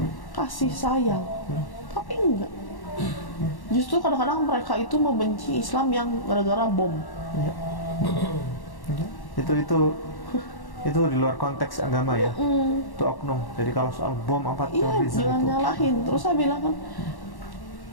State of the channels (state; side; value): late; right; 1.1 ms